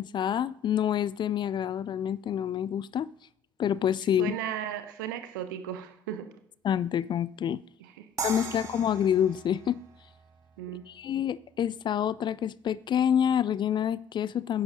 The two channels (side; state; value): right; quieter; 7.6 dB